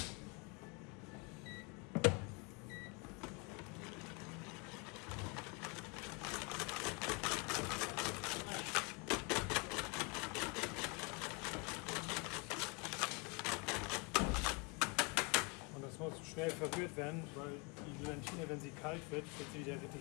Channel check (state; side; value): quieter; right; 29.5 dB